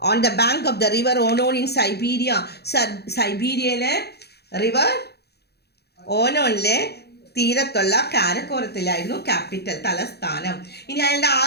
on the bank of the river Onon in Siberia. സൈബീരിയയിലെ റിവർ ഓണോണിലെ തീരത്തുള്ള കാരക്കോറത്തിലായിരുന്നു ക്യാപിറ്റൽ, തലസ്ഥാനം. ഇനി അയാളുടെ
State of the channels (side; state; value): right; late; 0.48 ms